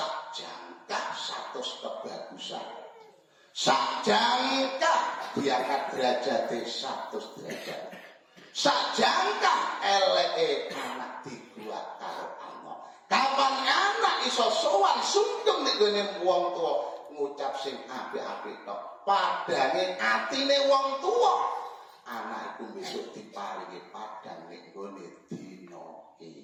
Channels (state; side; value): identical; both; correlation 1.00